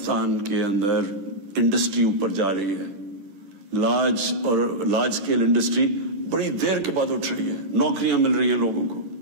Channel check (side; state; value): left; late; 10 ms